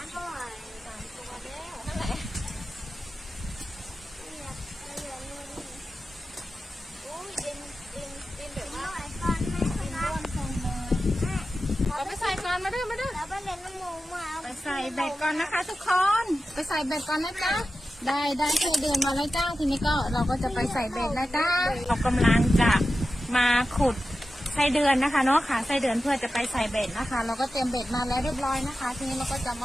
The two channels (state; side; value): normal; both; correlation 0.93